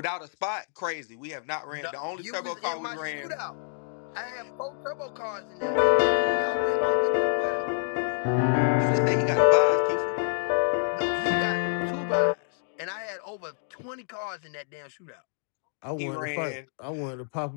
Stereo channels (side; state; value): right; silent; digital silence